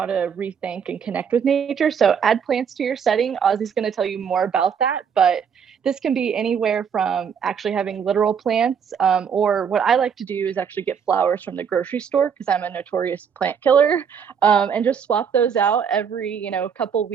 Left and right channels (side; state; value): left; quieter; 7.1 dB